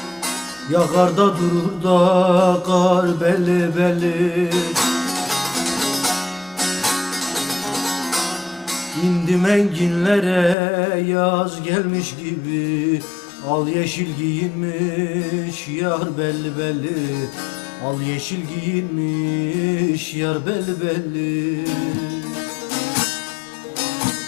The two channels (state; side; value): drops out; right; at 10.6 s